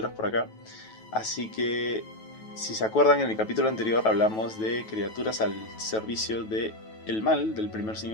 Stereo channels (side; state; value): right; late; 9.2 ms